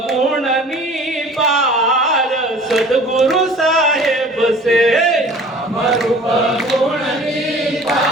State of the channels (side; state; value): both; normal; correlation 0.47